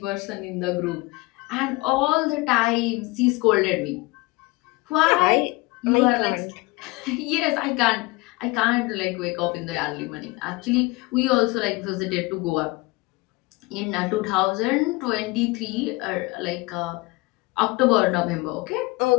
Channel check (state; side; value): quieter; right; 23.3 dB